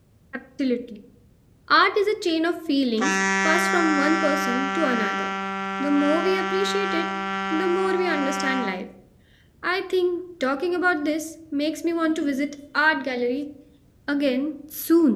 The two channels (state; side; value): identical; both; correlation 1.00